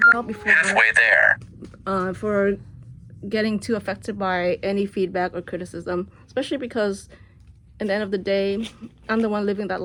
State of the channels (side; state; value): both; identical; correlation 1.00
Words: about before Halfway there. For getting too affected by any feedback or criticism, especially because at the end of the day, I'm the one living that